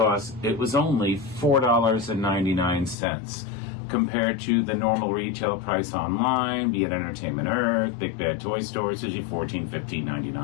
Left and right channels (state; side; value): drops out; right; at 3.0 s